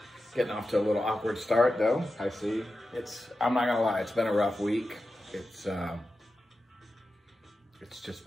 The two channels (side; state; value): both; normal; correlation 0.92